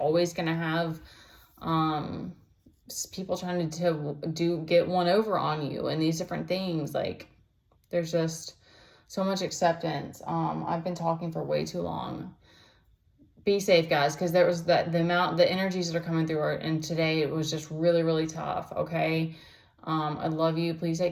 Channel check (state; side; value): identical; both; correlation 1.00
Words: going to have, people trying to get one over on you and these different things. Like, there's just so much acceptance. I've been talking for way too long. Be safe, guys, because there was the energies that are coming through and today it was just really, really tough. Okay. I love you. Please